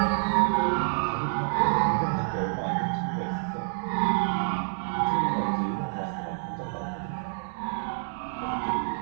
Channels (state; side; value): silent; left; digital silence